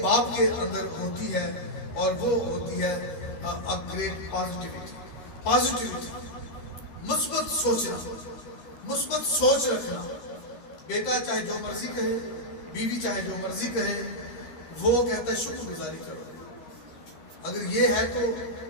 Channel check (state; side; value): late; right; 12 ms